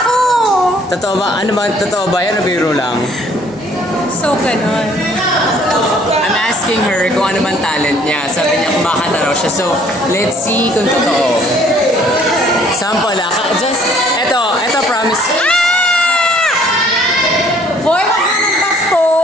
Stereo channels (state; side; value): normal; both; correlation 0.59